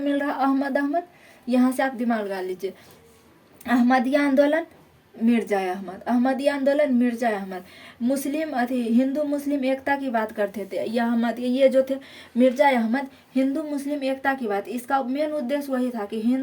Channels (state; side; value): identical; both; correlation 1.00